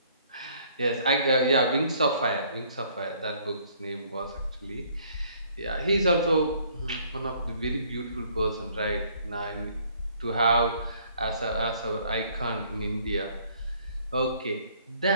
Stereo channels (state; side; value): inverted; both; correlation -0.61